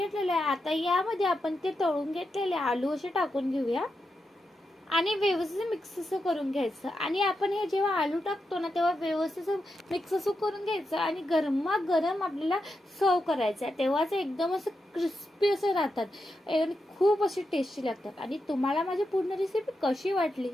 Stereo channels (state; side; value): normal; both; correlation 0.87